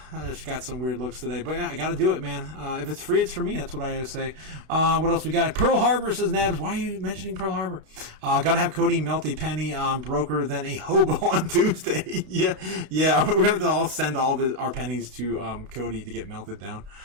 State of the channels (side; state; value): left; late; 32 ms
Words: just got some weird looks today, but yeah, I gotta do it, man. If it's free, it's for me. That's what I always say. What else we got? Pearl Harbor, says Nabs. Why are you mentioning Pearl Harbor? Gotta have Cody melt a penny broker than a hobo on Tuesday. Yeah. We're gonna all send all of our pennies to Cody to get melted down.